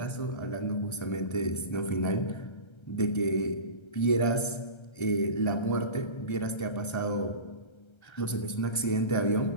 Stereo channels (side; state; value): right; late; 1.3 ms